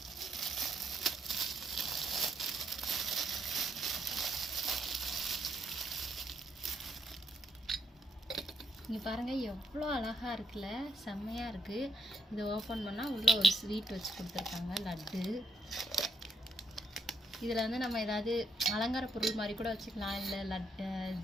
இங்கே பாருங்கள், எவ்வளோ அழகாக இருக்குல்ல, செம்மையாக இருக்குது. இதை ஓப்பன் பண்ணால் உள்ளே ஒரு ஸ்வீட் வச்சு கொடுத்துருக்காங்க, லட்டு. இதில் வந்து நம்ம ஏதாவது அலங்கார பொருள் மாதிரி கூட வச்சுக்கலாம், இல்லை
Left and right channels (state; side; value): normal; both; correlation 0.78